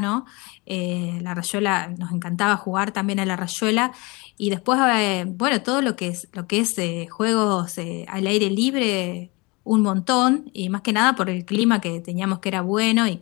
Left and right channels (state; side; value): quieter; right; 26.5 dB